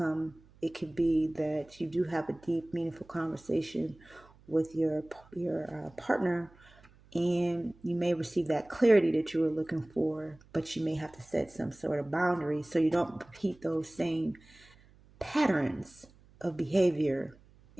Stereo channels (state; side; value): noise; right; hum, 27 dB below the sound